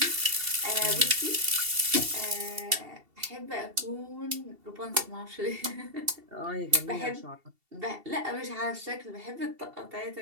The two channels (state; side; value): late; left; 2.7 ms